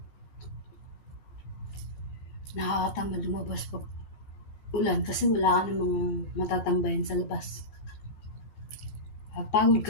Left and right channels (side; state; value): right; late; 15 ms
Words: nakakatamad lumabas pag ulan kasi wala ka namang matatambayan sa labas. Pagod ka